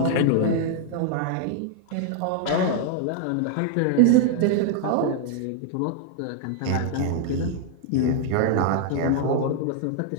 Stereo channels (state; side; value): different; both; correlation 0.00